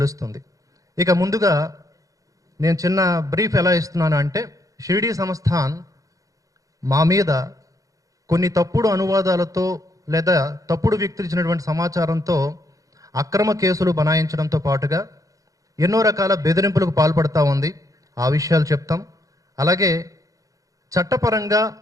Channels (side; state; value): left; late; 0.17 ms